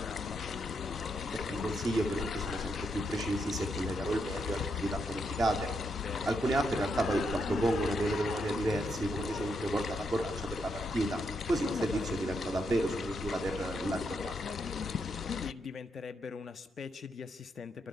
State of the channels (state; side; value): normal; both; correlation 0.80